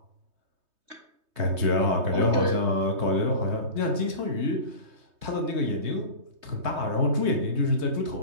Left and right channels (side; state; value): left; late; 3.2 ms